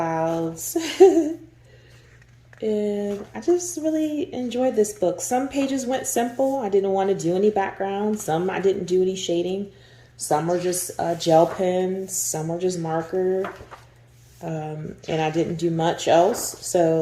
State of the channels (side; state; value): both; identical; correlation 1.00